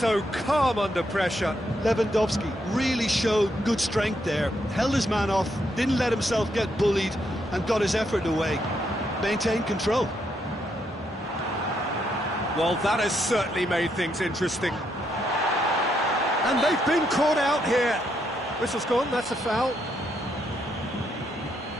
calm under pressure. Lewandowski really showed good strength there, held his man off, didn't let himself get bullied, and got his effort away. Maintained control. Well, that has certainly made things interesting. And they've been caught out here. Whistle's gone, that's a foul.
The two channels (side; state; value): both; normal; correlation 0.77